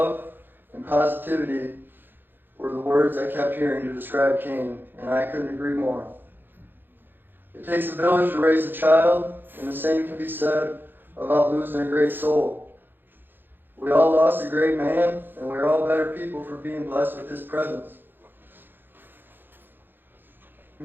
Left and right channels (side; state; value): left; late; 0.096 ms